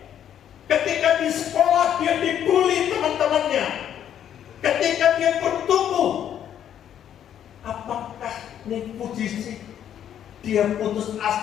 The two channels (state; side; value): quieter; right; 9.9 dB